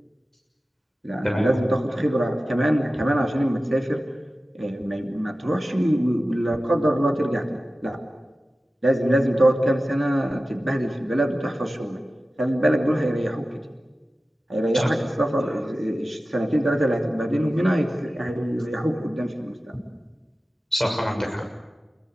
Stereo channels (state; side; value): normal; both; correlation 0.95